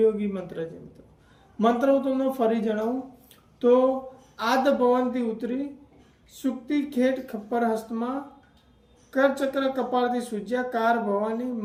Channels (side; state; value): both; identical; correlation 1.00